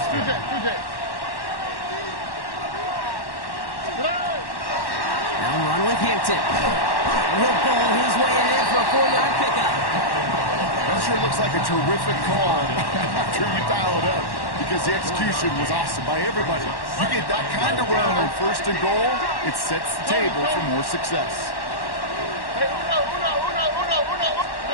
with Hampton. He'll bowl his way ahead for a 4-yard pickup. That sure looks like a terrific call after you dial it up, because the execution was awesome by everybody. You get that kind of run on 1st and goal, it sets the table for more success.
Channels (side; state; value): right; late; 1.1 ms